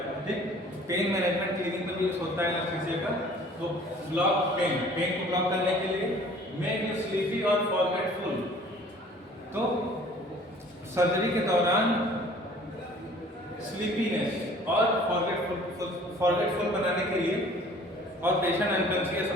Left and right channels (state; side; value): normal; both; correlation 0.51